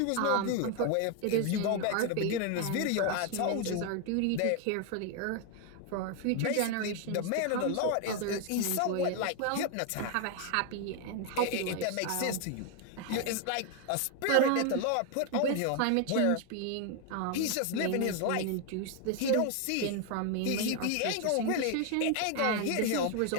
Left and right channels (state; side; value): different; both; correlation 0.01